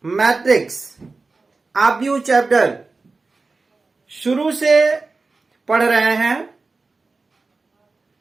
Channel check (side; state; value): left; quieter; 3.8 dB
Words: मैट्रिक्स आव्यूह चैप्टर शुरू से पढ़ रहे हैं।